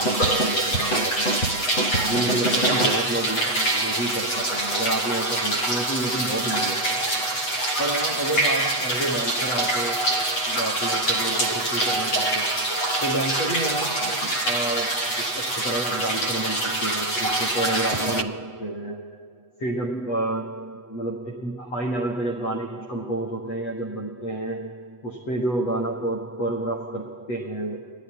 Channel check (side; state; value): right; late; 8.1 ms